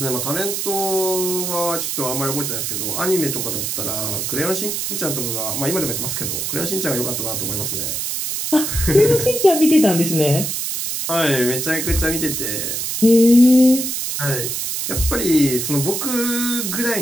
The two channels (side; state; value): right; noise; hiss, 2 dB below the sound